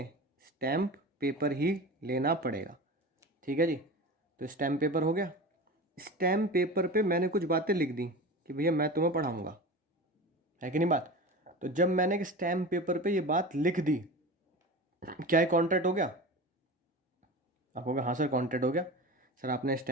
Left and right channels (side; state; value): both; normal; correlation 0.31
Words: स्टैम्प पेपर ही लेना पड़ेगा, ठीक है जी। तो स्टैम्प पेपर हो गया। स्टैम्प पेपर पे मैंने कुछ बातें लिख दी कि भैया मैं तुम्हें पढ़ाऊंगा, है कि नहीं बात। तो जब मैंने एक स्टैम्प पेपर पे ये बात लिख दी, क्या ये कॉन्ट्रैक्ट हो गया? आप कहोगे हाँ सर कॉन्ट्रैक्ट हो गया। सर आपने